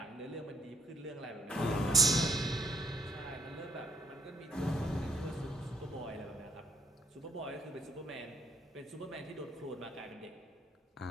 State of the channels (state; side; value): normal; both; correlation 0.66